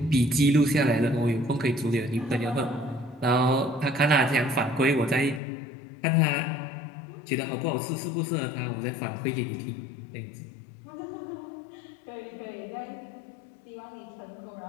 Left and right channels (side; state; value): right; drops out; at 5.4 s